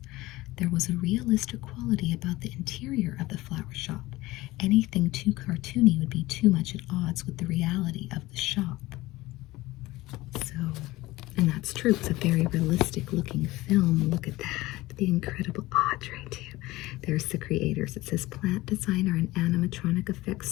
There was a realistic quality about the interior of the flower shop. Anything too cartoony would be too much at odds with the reality of the shop. So, and that's true. It's a very realistic looking film. Look at that. The incredible Audrey, too. There's the creators. It says plant designer and animatronic effects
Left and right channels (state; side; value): quieter; right; 18.8 dB